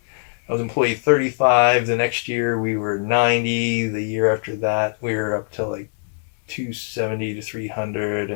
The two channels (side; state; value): right; silent; digital silence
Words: I was employee 35. The next year we were 90. The year after that we were up to like 270 to 300,